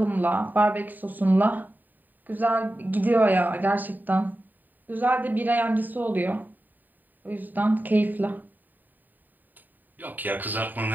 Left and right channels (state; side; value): late; left; 0.088 ms